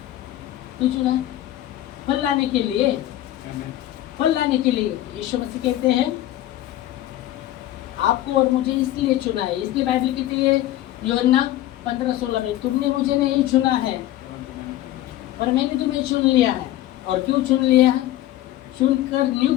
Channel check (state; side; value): quieter; right; 14.4 dB